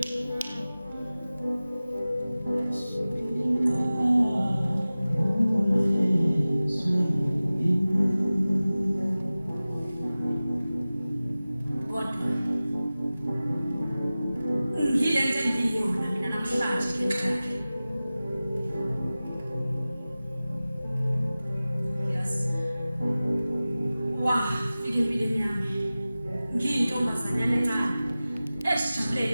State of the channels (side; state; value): both; inverted; correlation -0.97